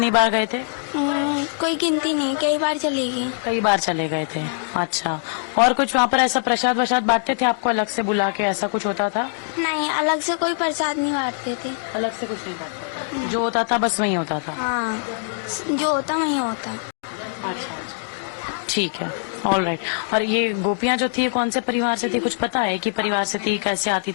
बार गए थे? कोई गिनती नहीं, कई बार चली गई। कई बार चले गए थे। अच्छा, और कुछ वहाँ पर ऐसा प्रसाद वसाद बांटते थे आपको अलग से बुला के, ऐसा कुछ होता था? नहीं, अलग से कोई प्रसाद नहीं बांटते थे। अलग से कुछ नहीं बांटते? जो होता था बस वही होता था? हाँ, जो होता वही होता। अच्छा, ठीक है, ऑल राइट। और ये गोपियाँ जो थी कौन से परिवार से थी, कुछ पता है कि परिवार से थी, कैसे आती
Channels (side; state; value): right; silent; digital silence